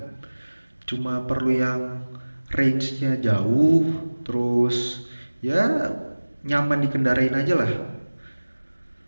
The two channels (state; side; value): inverted; both; correlation -1.00